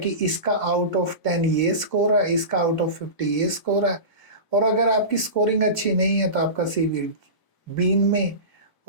इसका आउट ऑफ 10 ये स्कोर है, इसका आउट ऑफ 50 ये स्कोर है। और अगर आपकी स्कोरिंग अच्छी नहीं है तो आपका सीवी बीन में,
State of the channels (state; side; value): late; right; 1.0 ms